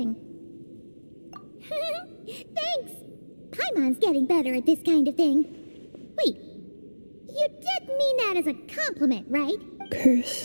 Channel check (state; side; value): inverted; both; correlation -1.00